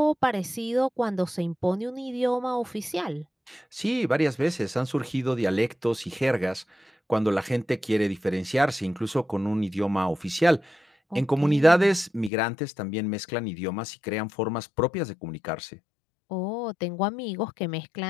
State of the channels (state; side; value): drops out; right; at 12.3 s